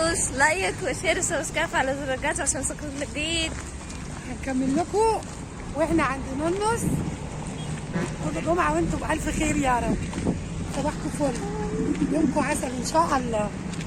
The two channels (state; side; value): identical; both; correlation 1.00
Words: لايك وشير وسبسكرايب على زر الجرس عشان يوصلكم جديد. هنكمل لكم واحنا عند نونس. كل جمعة وانتم بألف خير يا رب. صباحكم فل، يومكم عسل ان شاء الله.